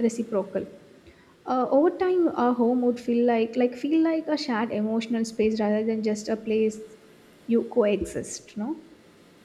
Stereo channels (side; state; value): both; identical; correlation 1.00